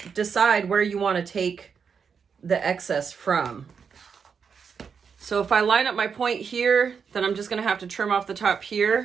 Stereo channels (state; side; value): quieter; left; 6.3 dB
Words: decide where you want to take the excess from. So if I line up my point here, then I'm just going to have to trim off the top